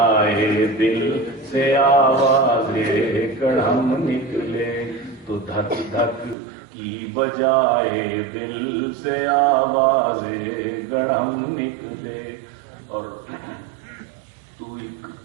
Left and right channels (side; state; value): left; drops out; at 6.4 s